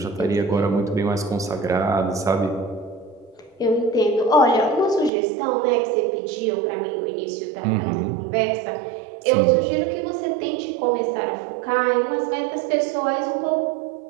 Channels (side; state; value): left; drops out; at 5.1 s